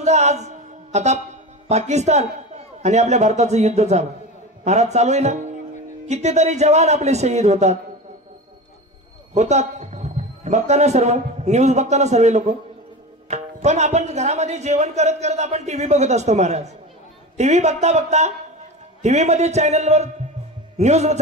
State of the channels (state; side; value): normal; both; correlation 0.27